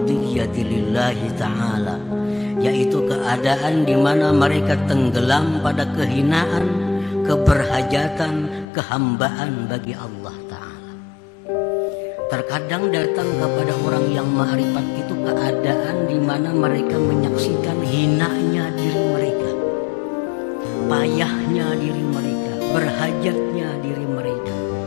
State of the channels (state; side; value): drops out; right; at 8.7 s